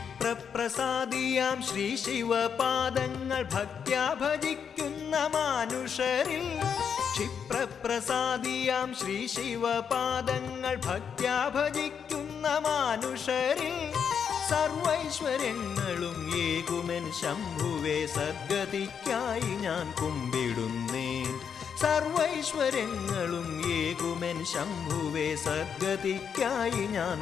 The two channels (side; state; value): right; quieter; 7.2 dB